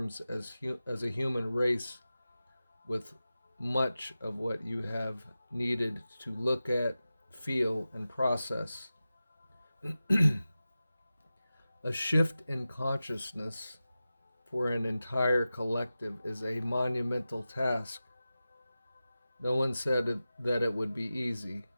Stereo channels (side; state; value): both; inverted; correlation -0.94